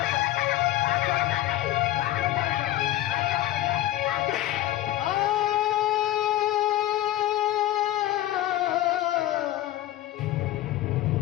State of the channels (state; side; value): quieter; right; 14.6 dB